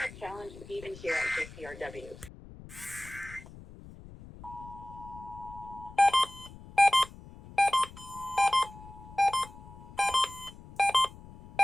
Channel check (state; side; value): noise; left; rumble, 17 dB below the sound